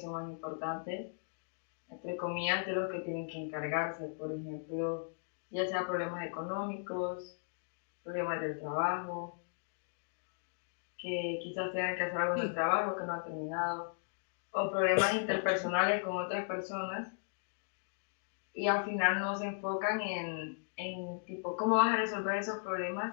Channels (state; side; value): silent; right; digital silence